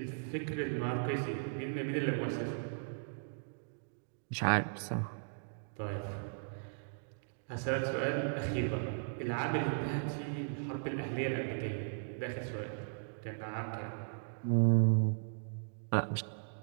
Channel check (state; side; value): silent; left; digital silence